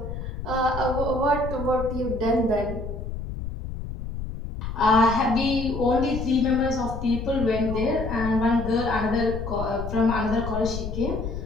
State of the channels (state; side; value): noise; left; rumble, 7 dB below the sound